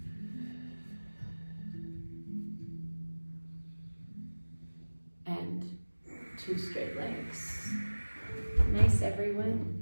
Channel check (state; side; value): inverted; both; correlation -1.00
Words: And 2 straight legs. Nice,